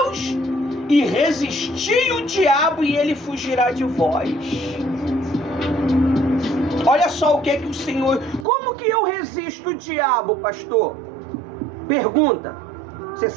e resisti o diabo, e ele fugirá de vós. Olha só o que é que o Senhor... Como que eu resisto o diabo, pastor? Pergunta. Você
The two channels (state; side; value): drops out; left; at 8.5 s